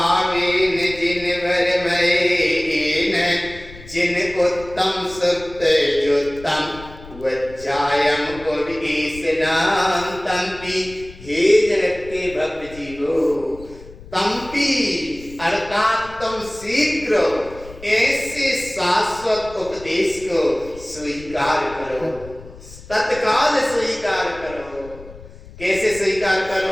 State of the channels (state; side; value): noise; left; rumble, 18 dB below the sound